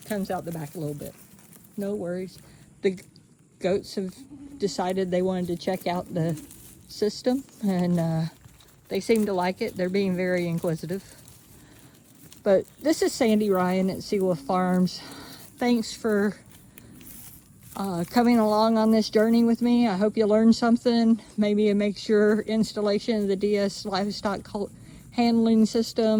comes out the back a little bit. No worries. The goats have decided they wanted to check out the system, and they seem to like it. They're being very inquisitive. But this is Sandy Ryan at SeeWolf Farms. Thanks for coming along on this journey with me. I hope you learned something. Maybe it makes your installation of the D-S Livestock handling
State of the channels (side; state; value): both; identical; correlation 1.00